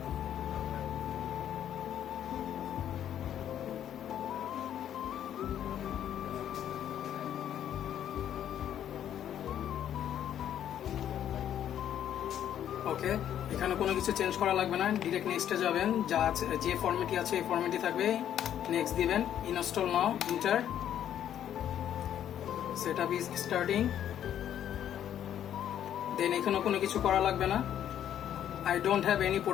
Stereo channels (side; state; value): right; quieter; 10.3 dB